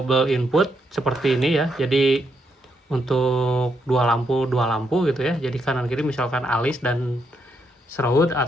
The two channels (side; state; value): both; normal; correlation 0.79